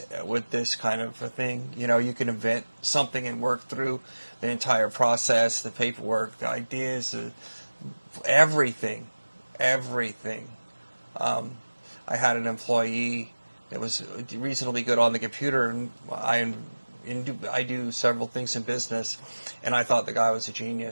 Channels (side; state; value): both; inverted; correlation -1.00